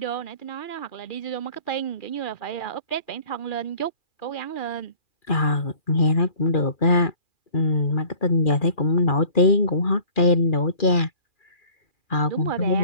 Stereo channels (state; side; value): late; right; 2.4 ms